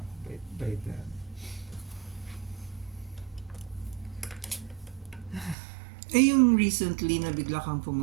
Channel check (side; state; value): left; drops out; at 5.6 s